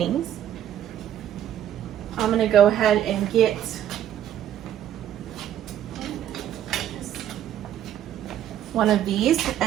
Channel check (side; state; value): left; quieter; 10.8 dB